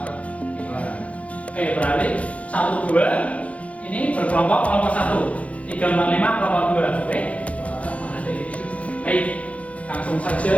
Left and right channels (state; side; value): late; right; 0.065 ms